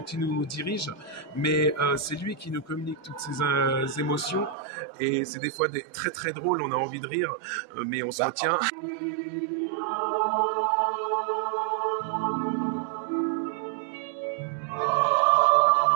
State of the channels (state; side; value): drops out; left; at 4.5 s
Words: il nous dirige, mais c'est lui qui nous communique toutes ces émotions. Et c'est des fois très très drôle, on a envie de rire, mais on se retient.